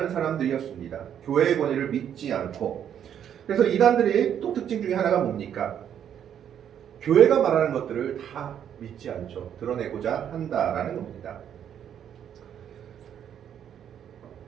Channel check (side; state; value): left; quieter; 9.3 dB